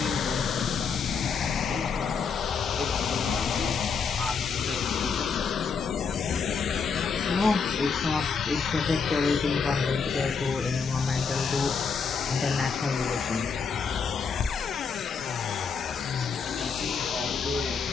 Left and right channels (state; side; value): quieter; right; 5.6 dB